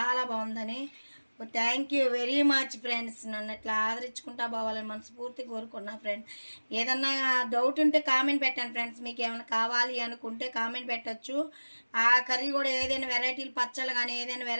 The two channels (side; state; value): both; inverted; correlation -1.00